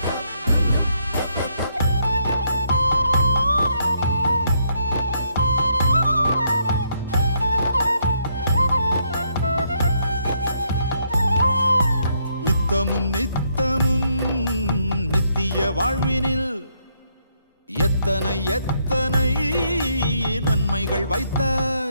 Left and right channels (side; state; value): both; inverted; correlation -0.73